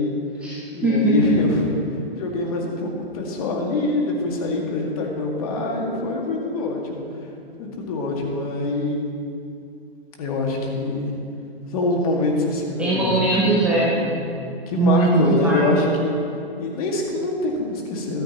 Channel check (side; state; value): both; normal; correlation 0.05